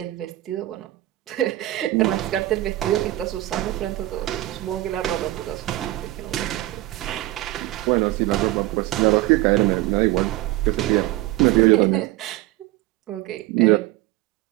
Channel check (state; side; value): quieter; left; 16.9 dB